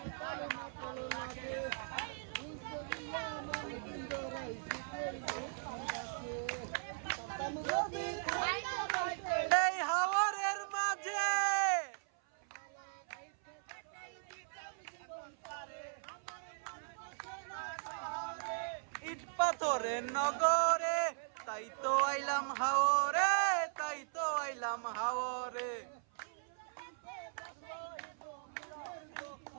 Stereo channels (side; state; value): left; silent; 52 dB below the other